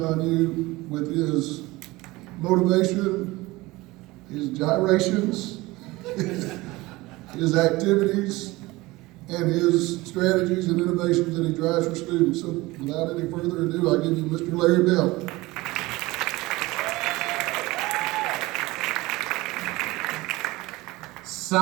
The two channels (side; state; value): left; quieter; 20.6 dB